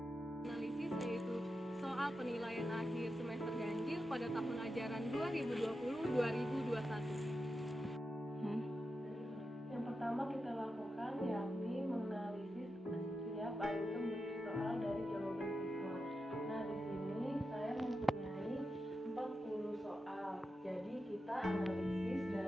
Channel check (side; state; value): both; normal; correlation 0.89